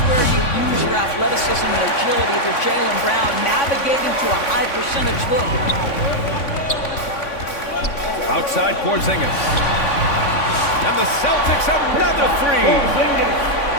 where you use your athleticism and agility for Jaylen Brown, navigating to a high percentage look. Outside Porzingis. And the Celtics another three.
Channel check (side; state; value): right; late; 3.5 ms